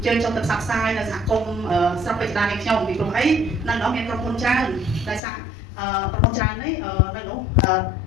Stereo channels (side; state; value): right; drops out; at 5.2 s